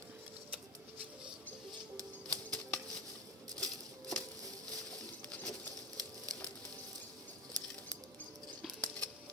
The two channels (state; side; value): normal; both; correlation 0.19